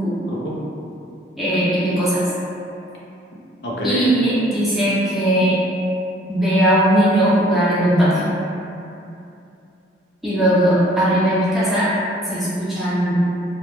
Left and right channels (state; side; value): normal; both; correlation 0.57